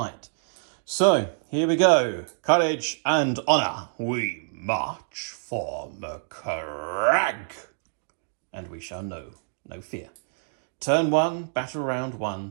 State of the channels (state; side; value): silent; left; digital silence